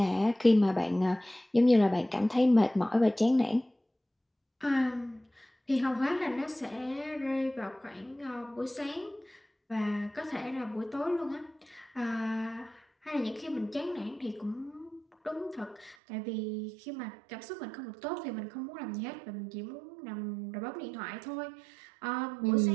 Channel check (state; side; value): drops out; left; at 16.0 s